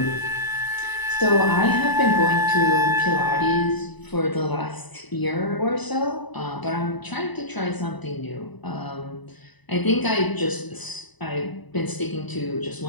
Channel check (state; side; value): late; right; 1.0 ms